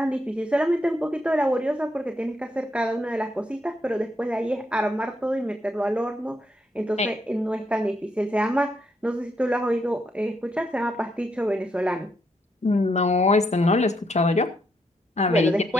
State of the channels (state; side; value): normal; both; correlation 0.77